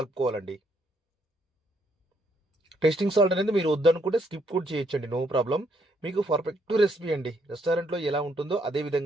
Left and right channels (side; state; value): both; normal; correlation 0.72